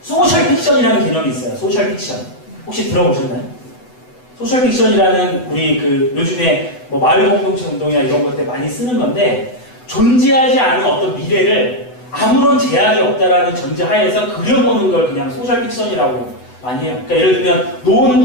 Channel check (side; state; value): right; late; 7.9 ms